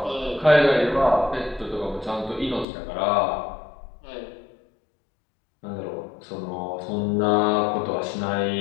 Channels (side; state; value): right; drops out; at 2.7 s